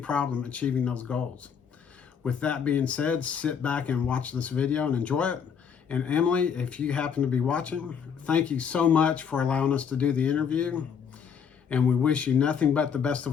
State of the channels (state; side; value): quieter; right; 7.1 dB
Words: achieving those goals. With that being said, sit back and watch this video and enjoy it. And Emily, if you happen to be watching, thank you so much for allowing us to do the interview. And we wish you nothing but the best